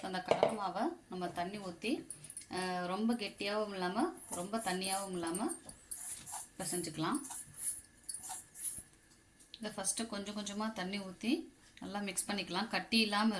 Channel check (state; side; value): identical; both; correlation 1.00